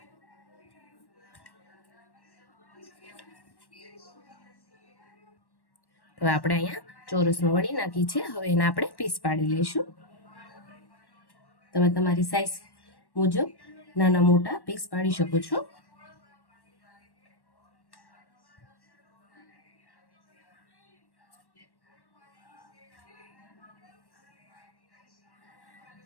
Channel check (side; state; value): right; late; 1.1 ms